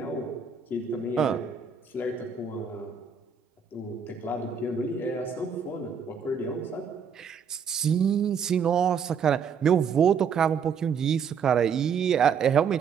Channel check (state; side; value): quieter; left; 6.6 dB